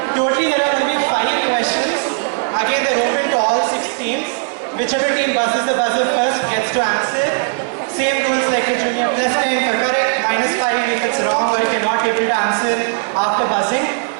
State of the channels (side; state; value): left; silent; 63 dB below the other